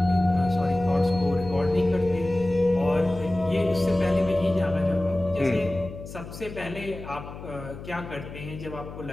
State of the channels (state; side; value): noise; left; hum, 12 dB below the sound